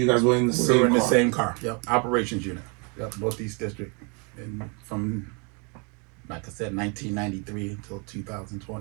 were in the same car. We were in the same car. Yep. Operations unit. Yep. Northeast District. And from, like I said, 1993 until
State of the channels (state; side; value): quieter; left; 33.8 dB